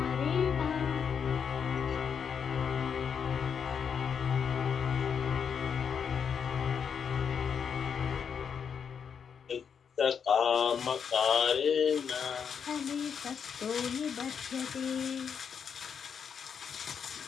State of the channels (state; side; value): quieter; right; 7.0 dB